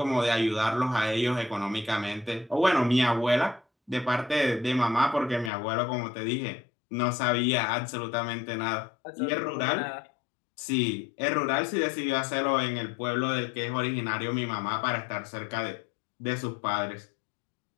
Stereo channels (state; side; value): drops out; right; at 5.5 s